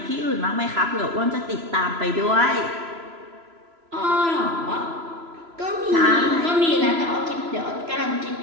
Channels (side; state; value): left; late; 3.0 ms